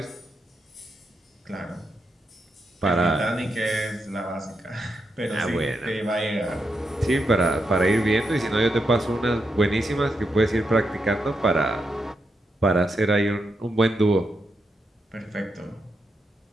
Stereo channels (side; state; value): both; normal; correlation 0.84